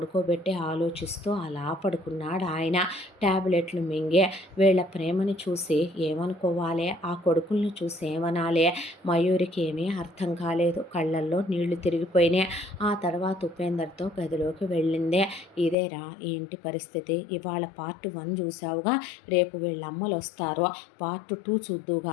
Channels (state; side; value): drops out; right; at 15.8 s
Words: ఆలోచిస్తూ అలా పడుకున్నాడు ఆయన. ట్యాబ్లెట్లు మింగే వీళ్ళ ప్రేమని చూసి ఏమనుకోవాలి, ఆ కొడుకుల్ని చూసి ఏమనాలి, మయూరికి ఏమీ అర్థం కాలేదు. కళ్ళల్లో నీళ్లు తిరిగిపోయినాయి. ఆ తర్వాత ఉపేందర్తో గదిలోకి వెళ్ళిందే. ఇదేరా ఈ ఇంటి పరిస్థితి, ఇవాళ పార్ట్ 1 చూసావుగా, రేపు వీళ్ళ అమ్మలు వస్తారు, పార్ట్ 2 చూద్దు